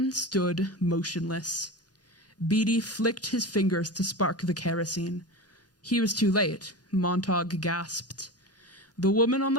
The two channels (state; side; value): normal; both; correlation 0.27